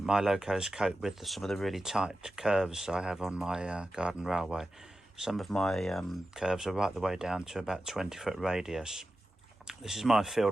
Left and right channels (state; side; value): normal; both; correlation 0.93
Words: locos cope with some of the really tight curves I have on my garden railway. Some of my curves are right the way down to about 20-foot radius. This is my